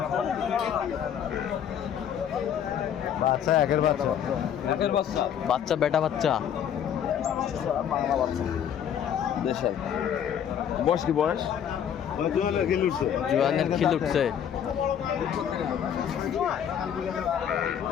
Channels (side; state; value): right; quieter; 9.0 dB